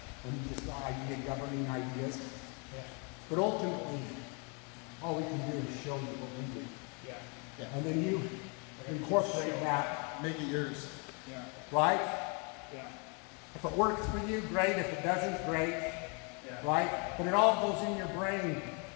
and just the idea, governing ideas. Yeah. But ultimately, all we can do is show you what we do. Yeah. And then you incorporate that, make it yours. Yeah. right? Yeah. If it works for you, great. If it doesn't, great. Yeah. Right? But it all goes in your brain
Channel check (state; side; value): quieter; right; 34.4 dB